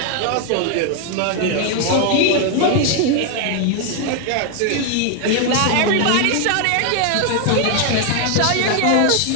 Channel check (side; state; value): both; different; correlation 0.00